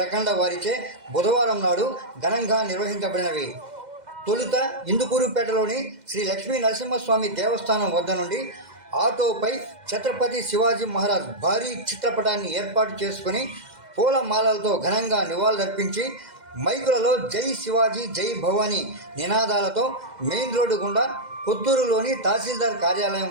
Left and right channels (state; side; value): late; left; 2.1 ms